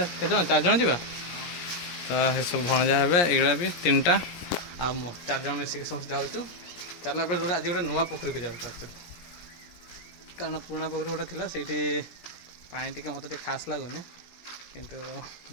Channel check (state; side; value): late; right; 17 ms